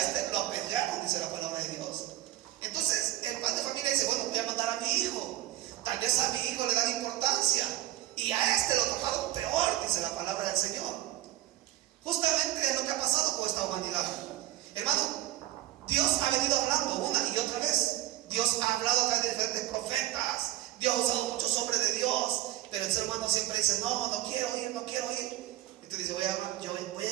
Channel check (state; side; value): quieter; left; 14.9 dB